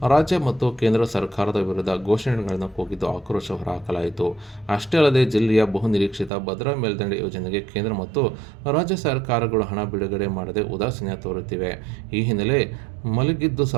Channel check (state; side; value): drops out; left; at 6.3 s